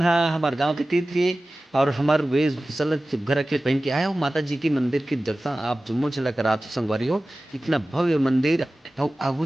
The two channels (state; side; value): normal; both; correlation 0.96